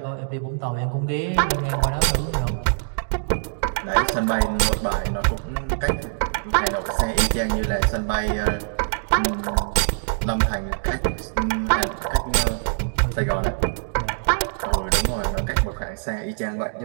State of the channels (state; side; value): silent; left; digital silence